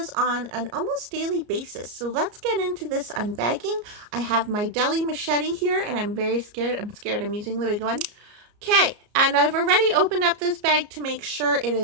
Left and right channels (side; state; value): left; late; 34 ms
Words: on an almost daily basis. So let's get into this unbagging. I have my deli machete here and I'm very scared. I'm using the big one. Okay, and I've already opened up this bag to make sure it